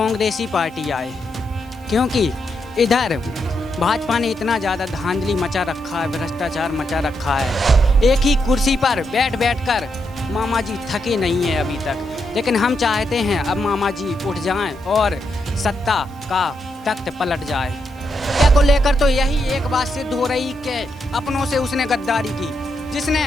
पार्टी आए, क्योंकि इधर भाजपा ने इतना ज़्यादा धांधली मचा रखा है, भ्रष्टाचार मचा रखा है। एक ही कुर्सी पर बैठ बैठ कर मामा जी थके नहीं है अभी तक। लेकिन हम चाहते हैं अब मामा जी उठ जाएं और सत्ता का तख्त पलट जाए। क्या को लेकर तो यही एक बात सिद्ध हो रही कि अपनों से उसने गद्दारी की, जिसने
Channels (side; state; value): both; normal; correlation 0.82